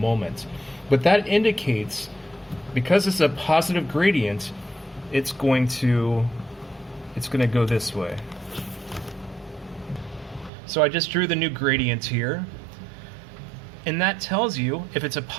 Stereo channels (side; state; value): left; drops out; at 10.5 s